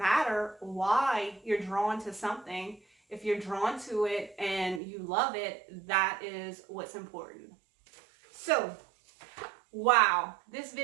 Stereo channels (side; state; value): left; drops out; at 4.8 s